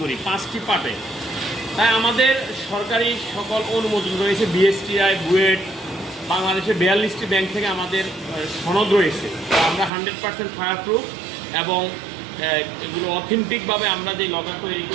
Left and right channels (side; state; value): left; drops out; at 9.9 s